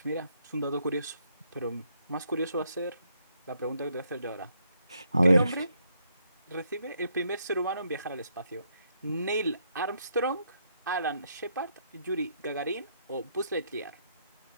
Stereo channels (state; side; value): inverted; both; correlation -0.74